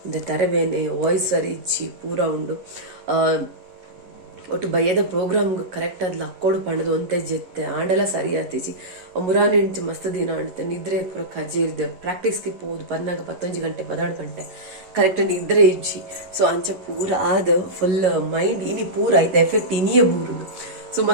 ಒಂದು ತರಬೇನೆ ವಾಯ್ಸ್ ಸರಿಜ್ಜಿ ಪೂರ ಉಂಡು ಒಟ್ಟು ಬಯ್ಯದ ಪ್ರೋಗ್ರಾಮ್ ಕರೆಕ್ಟ್ ಆದ್ ಲಕ್ಕೋಡು ಪಂಡದು ಒಂತೆ ಜೆತ್ತೆ ಆಂಡೆಲ್ಲ ಸರಿ ಆತಿಜಿ ಮುರಾನಿ ಇಂಚು ಮಸ್ತ್ ದಿನ ಆಡುತ್ತೆ ನಿದ್ರೆ ಪೂರ ಕಜೆ ಇರ್ದೆ ಪ್ರಾಕ್ಟೀಸ್ಗೆ ಪೋದು ಪನ್ನಾಗ 11 ಗಂಟೆ 12 ಗಂಟೆ ಕರೆಕ್ಟ್ ನಿದ್ರೆ ಇಜ್ಜಿ ಸೊ ಅಂಚ ಪೂರ ಆದ ಫುಲ್ ಮೈಂಡ್ ಇನಿ ಪೂರ ಆಯ್ತು ಎಫೆಕ್ಟ್ ಇನಿಯೇ ಬೂರುಂಡು ಸೊ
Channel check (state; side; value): late; left; 11 ms